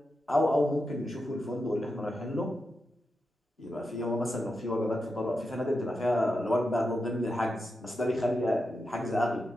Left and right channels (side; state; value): both; normal; correlation 0.88